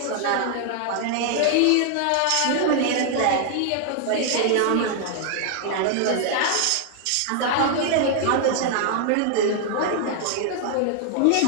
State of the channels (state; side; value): different; both; correlation 0.00